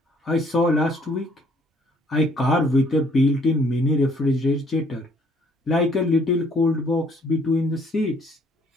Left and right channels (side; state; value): both; normal; correlation 0.63